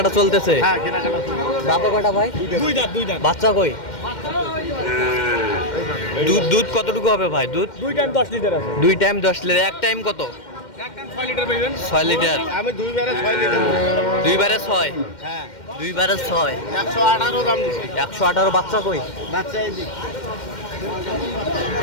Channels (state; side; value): late; right; 2.1 ms